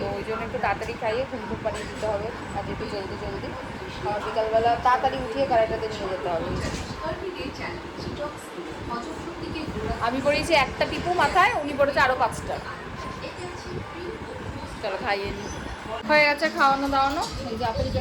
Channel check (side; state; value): both; identical; correlation 1.00